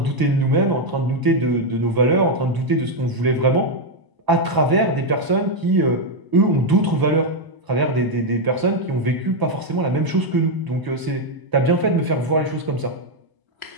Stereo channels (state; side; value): late; left; 1.0 ms